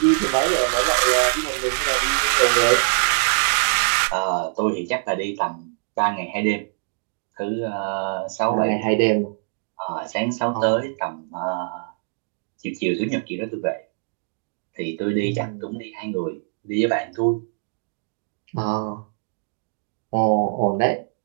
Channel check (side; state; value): left; silent; digital silence